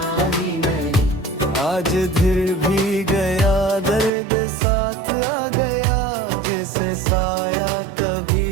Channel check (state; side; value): drops out; left; at 4.1 s